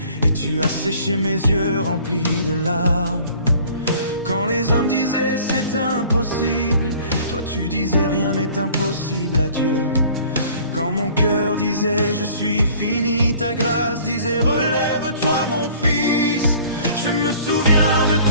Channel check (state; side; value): inverted; both; correlation -0.51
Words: et tu as séché mes yeux remplis de larmes. Quand les hommes disaient c'est impossible, toi tu disais rien n'est impossible à Dieu. Quand mon cœur disait je suis fini, ta grâce disait relève-toi mon fils. Je me souviens de